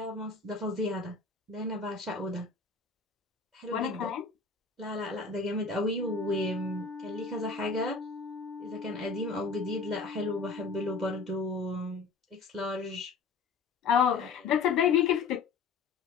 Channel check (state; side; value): quieter; right; 4.6 dB